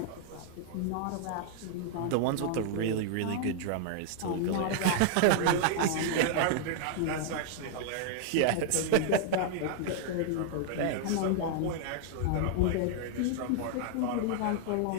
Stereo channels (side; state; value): both; different; correlation 0.00